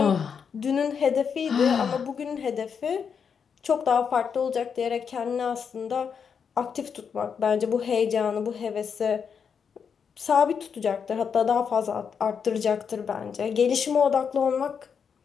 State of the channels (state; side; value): quieter; right; 6.7 dB